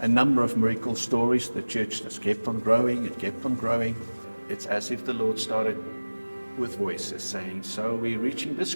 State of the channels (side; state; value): both; inverted; correlation -1.00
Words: number of miracle stories. The church just kept on growing, it kept on growing. It's as if the Lord started with voices saying, so we're reaching this